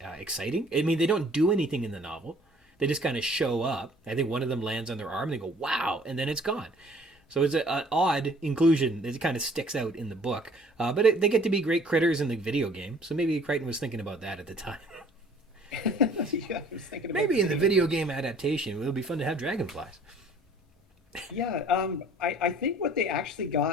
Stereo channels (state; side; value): normal; both; correlation 0.54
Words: exciting. I mean, they don't do anything in the novel. They just kind of show up. I think one of them lands on their arm and they go, wow, and then it's gone. So it's an odd inclusion that kind of sticks out in the book. But they get to be great critters in the video game. So maybe Crichton was thinking about that at the time. Yeah, I was thinking about maybe in the video game adaptation, it'll be fun to have dragonflies. Yeah, I think what they actually